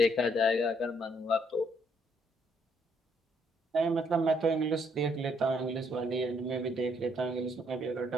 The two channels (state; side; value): normal; both; correlation 0.70